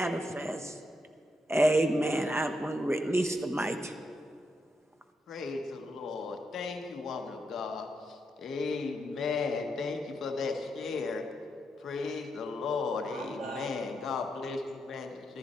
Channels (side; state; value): both; normal; correlation 0.82